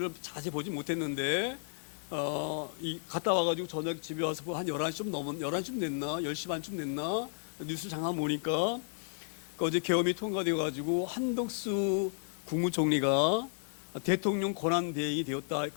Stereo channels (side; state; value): right; silent; digital silence